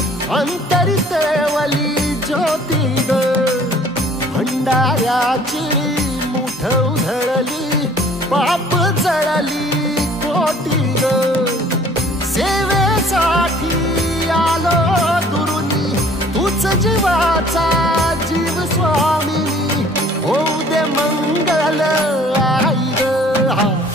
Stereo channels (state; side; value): normal; both; correlation 0.54